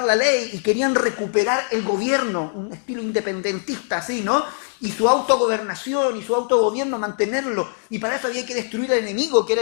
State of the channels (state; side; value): silent; right; 64 dB below the other